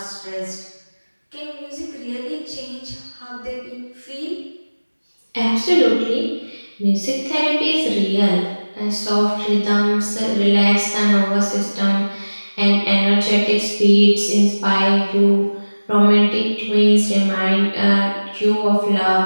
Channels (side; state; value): both; inverted; correlation -1.00